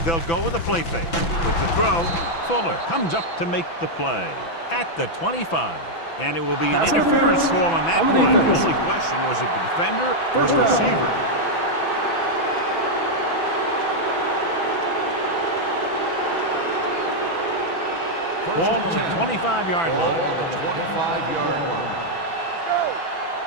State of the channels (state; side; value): late; right; 6.0 ms